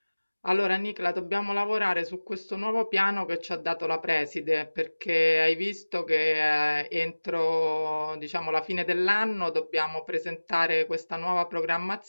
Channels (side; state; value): both; inverted; correlation -1.00